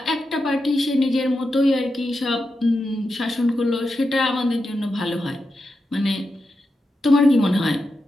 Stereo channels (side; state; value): both; normal; correlation 0.88